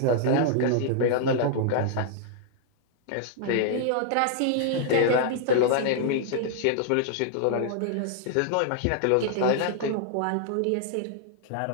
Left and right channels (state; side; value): different; both; correlation -0.01